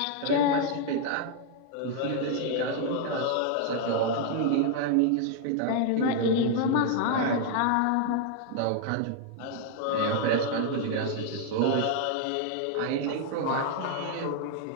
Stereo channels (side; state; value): both; different; correlation 0.00